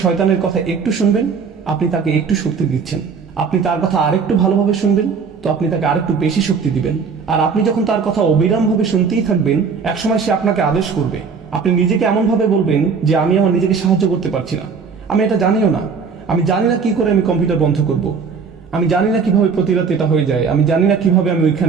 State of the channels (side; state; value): left; quieter; 5.6 dB